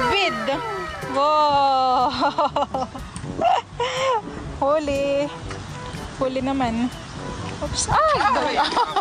Wow! Huli. Huli naman. Oops. Ay!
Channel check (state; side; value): identical; both; correlation 1.00